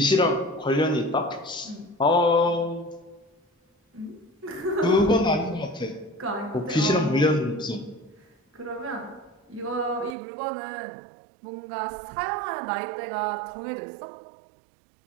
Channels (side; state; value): left; drops out; at 10.2 s